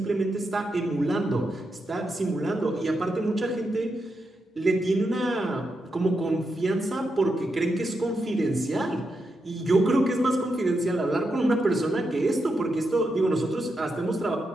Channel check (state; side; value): normal; both; correlation 0.85